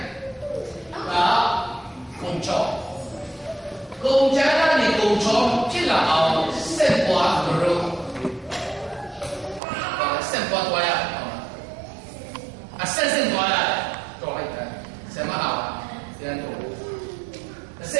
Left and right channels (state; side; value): drops out; left; at 9.6 s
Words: đó công cho công chén là gì công cho chỉ là ao sen quả rồi sen quả toa ya sen toa ya toa ya sen mà hảo sen toa